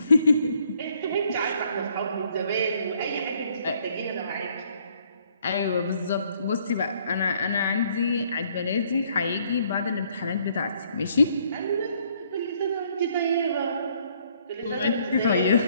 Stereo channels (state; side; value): inverted; both; correlation -0.66